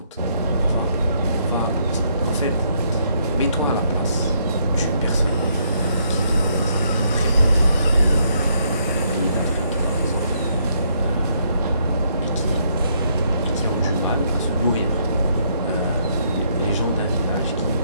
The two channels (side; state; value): both; inverted; correlation -0.72